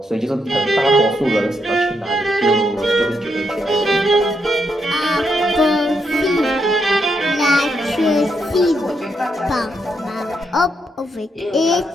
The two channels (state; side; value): normal; both; correlation 0.79